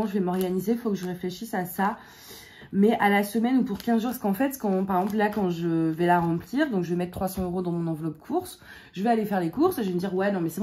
je vais m'organiser, il faut que je réfléchisse à ça. Mais à la semaine ou pour 15 jours, parce qu'en fait, par exemple, là, quand je vais la remplir, donc je vais mettre 300 € dans mon enveloppe course, je vais aller faire les courses, et je vais me dire, ouais, non, mais c'est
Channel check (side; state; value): both; identical; correlation 1.00